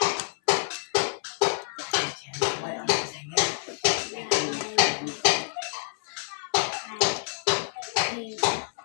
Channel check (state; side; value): silent; right; 60 dB below the other